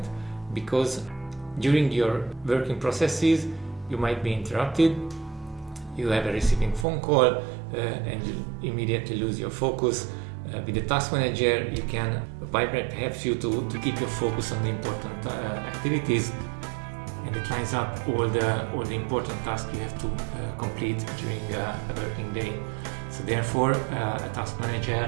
because during your working processes you might be interrupted. You have a receiving phone call and you immediately lose your focus. With the task manager, Pipedrive helps you to keep your focus on the important activities, and it lines up all the important tasks you have to complete during a working day. So therefore, a task manager,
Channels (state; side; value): drops out; left; at 6.9 s